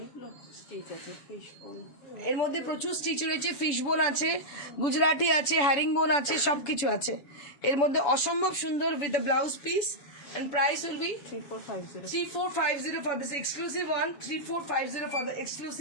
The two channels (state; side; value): late; right; 7.0 ms